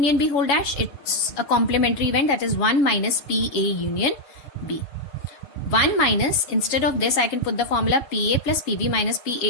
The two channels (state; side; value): late; right; 7.2 ms